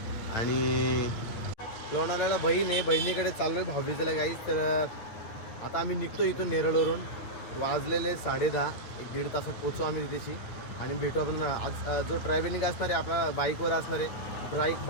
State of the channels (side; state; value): right; late; 9.0 ms